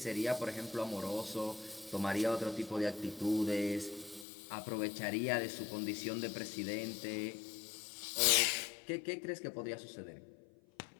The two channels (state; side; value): drops out; right; at 4.2 s